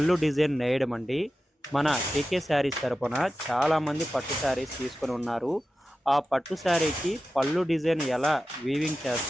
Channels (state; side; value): normal; both; correlation 0.93